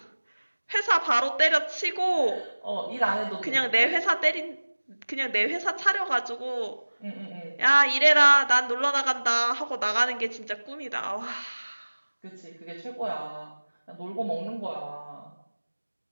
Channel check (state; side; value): inverted; both; correlation -1.00